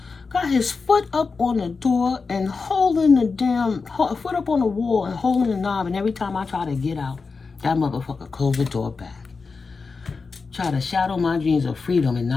Got his foot up on the door and holding the damn foot up on the wall and holding the knob. And every time I try to get out, that motherfucker closed the door back. Try to shadow my dreams of freedom and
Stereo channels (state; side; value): quieter; right; 4.6 dB